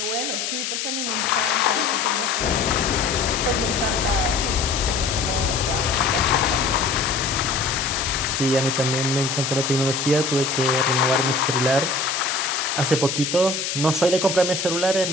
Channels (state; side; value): noise; left; hiss, 3 dB below the sound